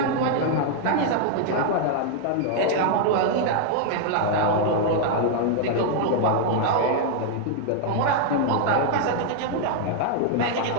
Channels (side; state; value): both; different; correlation 0.00